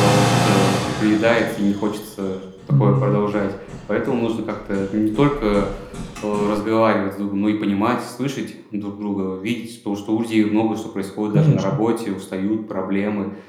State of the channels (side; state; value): both; identical; correlation 1.00